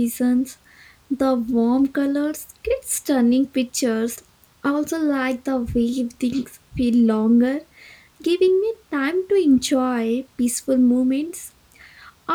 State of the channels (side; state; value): both; identical; correlation 1.00